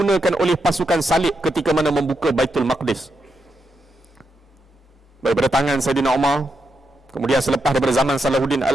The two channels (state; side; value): normal; both; correlation 0.84